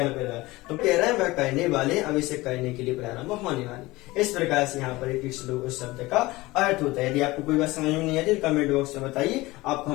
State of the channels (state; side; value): quieter; right; 20.3 dB